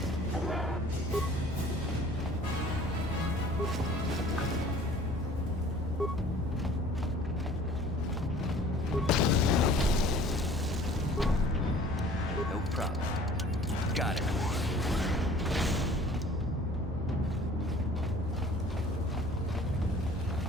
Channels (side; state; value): both; normal; correlation 0.49